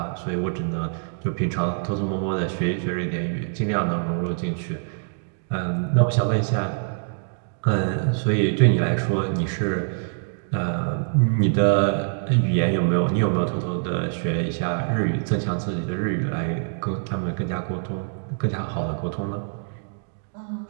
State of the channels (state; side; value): silent; left; digital silence